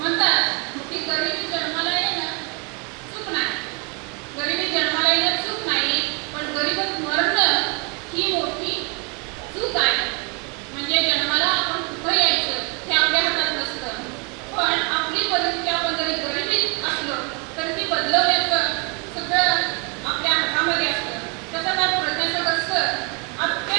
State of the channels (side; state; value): left; quieter; 33.5 dB